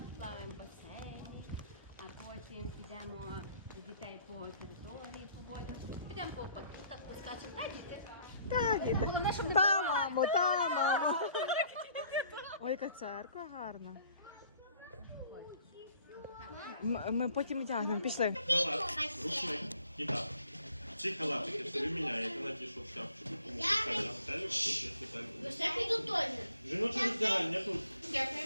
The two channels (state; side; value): inverted; both; correlation -0.60